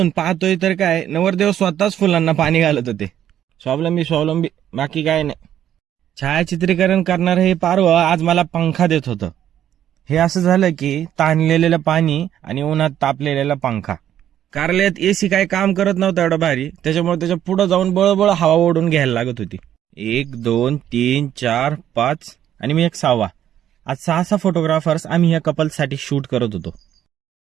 पाहतोय तर काय, नवरदेव स्वतःच फुलांना पाणी घालत होते. स्वावलंबी बाकी काय नाही. छायाचित्रीकरण करणार हे पारवं आज मला पंखा देत होतं. हे असं झालं की ताणलेलं पाणी आणि उन्हात तापलेला पंखा. कारल्यात एसी काय काम करत नव्हता एवढा भारी, त्याच्यामुळे त्याच्या पुढे जाऊन बळबळ हवा ओढून घ्यायला लागत होती. 1 2 3 4 5 आणि मी एक 6वा. आज 6 फोटोग्राफर्स आम्ही या कपलसाठी शूट करत होतो.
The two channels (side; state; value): left; quieter; 10.8 dB